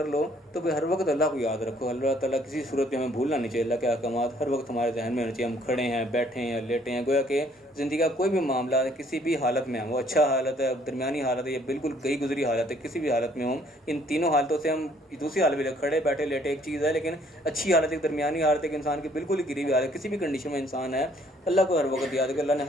لو تو پھر ہر وقت اللہ کو یاد رکھو. اللہ تعالیٰ کسی صورت میں ہمیں بھولنا نہیں چاہیے. اللہ کے احکامات ہر وقت ہمارے ذہن میں ہونے چاہیے. ہم کھڑے ہیں, بیٹھے ہیں, لیٹے ہیں, گویا کہ زندگی کا کوئی بھی معاملہ ہے, کسی بھی حالت میں ہم, وہ اچھا حالت ہے, درمیانی حالت ہے, یا بالکل گئی گزری حالت ہے, کسی بھی حالت میں ہوں, ان تینوں حالتوں سے ہم دوسری حالت میں کھڑے بیٹھے لیٹے ایک چیز ہے, لیکن اچھی حالت ایک درمیانی حالت ہے کہ انسان کی بالکل ہی گری ہوئی حالت, کسی بھی کنڈیشن میں انسان ہے, اللہ کو ہر وقت یاد ہے کہ اللہ نے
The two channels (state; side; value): normal; both; correlation 0.62